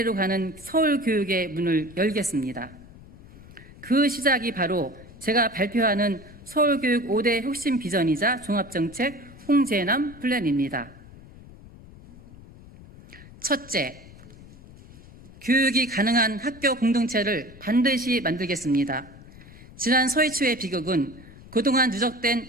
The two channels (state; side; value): noise; left; rumble, 20 dB below the sound